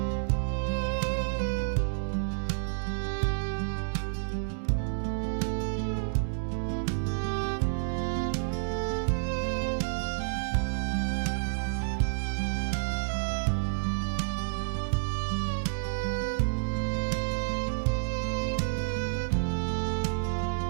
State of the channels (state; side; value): silent; left; digital silence